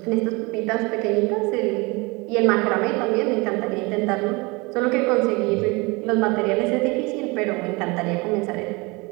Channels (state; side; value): quieter; left; 26.2 dB